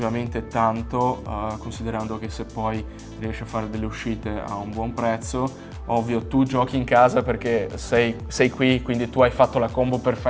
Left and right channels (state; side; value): identical; both; correlation 1.00